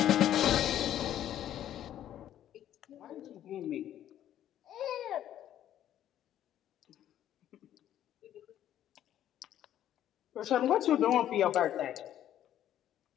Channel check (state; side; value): quieter; right; 11.4 dB